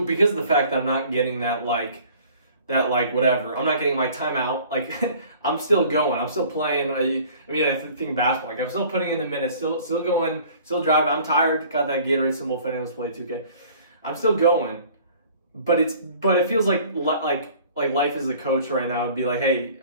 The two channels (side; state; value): both; inverted; correlation -0.51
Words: because of the fact that I'm not getting that like that like whatever. I'm not getting my timeout. Like I'm still going. I'm still playing. I think basketball. Like I'm still putting in the minutes. Still going. Still driving. I'm tired. Got that Gatorade symbol. If anyone's played 2K, I'm still going. But it feels like life as a coach right now would be like, hey,